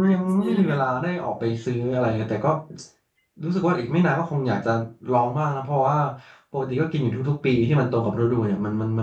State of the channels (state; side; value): identical; both; correlation 1.00